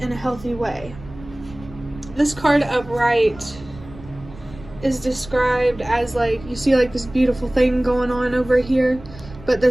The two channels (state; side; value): noise; right; rumble, 18 dB below the sound